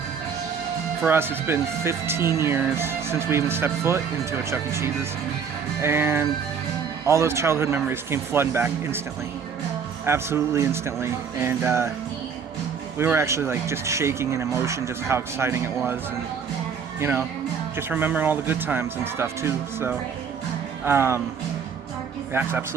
for us it's been 15 years since we even stepped foot into a Chuck E. Cheese's, and all those childhood memories came flooding back instantly, absolutely instantly. And we were actually like just shaking in emotion, just how exciting it was, and you know, just remembering all the good times and stuff too. So that's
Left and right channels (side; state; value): left; quieter; 6.5 dB